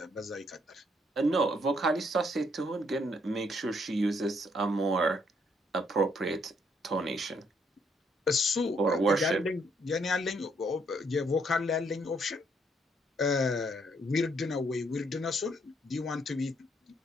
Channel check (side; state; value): both; normal; correlation 0.71